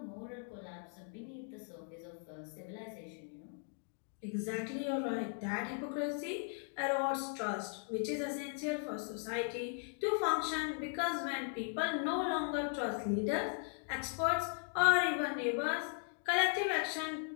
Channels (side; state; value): right; silent; 52 dB below the other